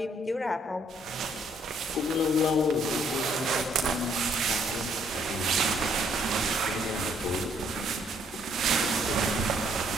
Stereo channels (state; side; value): normal; both; correlation 0.67